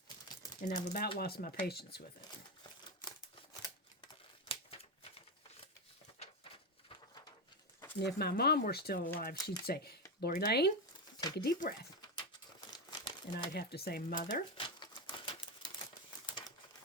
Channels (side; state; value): both; normal; correlation 0.12